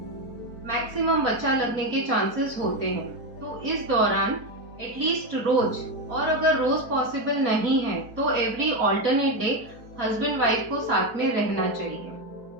मैक्सिमम बच्चा लगने के चांसेस होते हैं। तो इस दौरान एटलीस्ट रोज, और अगर रोज पॉसिबल नहीं है तो every alternate day husband wife को साथ में रहना चाहिए।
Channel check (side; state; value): left; late; 4.4 ms